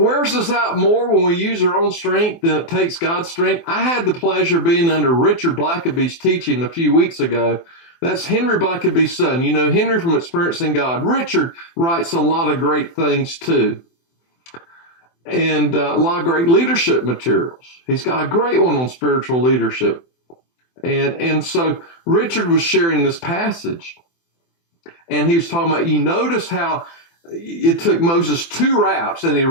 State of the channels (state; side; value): late; right; 24 ms